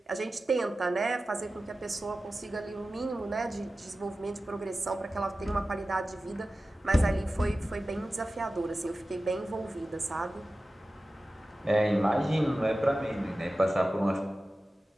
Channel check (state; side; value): normal; both; correlation 0.95